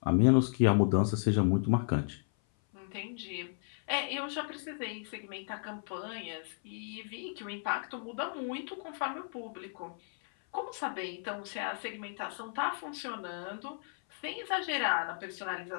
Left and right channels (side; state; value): right; silent; 55 dB below the other